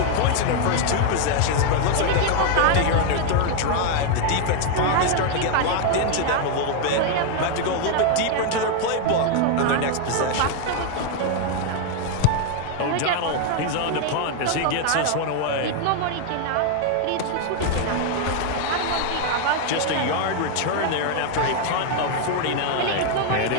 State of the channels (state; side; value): different; both; correlation 0.01